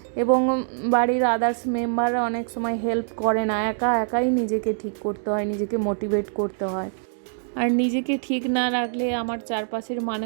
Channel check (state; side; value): silent; left; digital silence